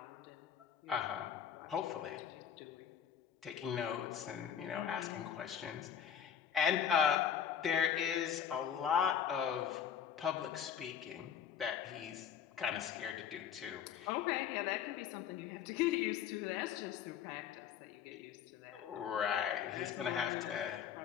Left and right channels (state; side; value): quieter; right; 8.4 dB